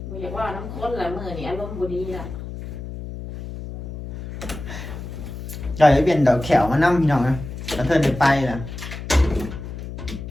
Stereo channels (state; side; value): noise; left; hum, 9 dB below the sound